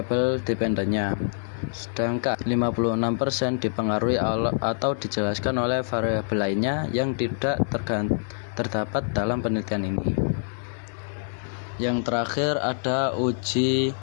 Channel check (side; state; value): right; silent; digital silence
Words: dependennya. Sedangkan 56% dipengaruhi atau dijelaskan oleh variabel lainnya yang tidak terdapat dalam penelitian ini. Yang terakhir ada uji